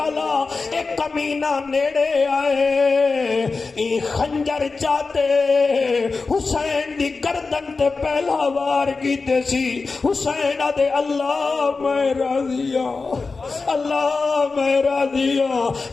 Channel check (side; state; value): right; quieter; 4.2 dB